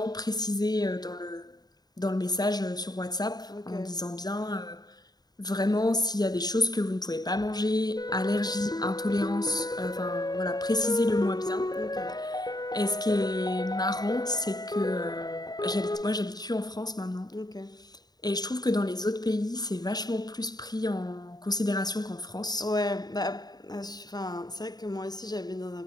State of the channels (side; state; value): right; late; 0.19 ms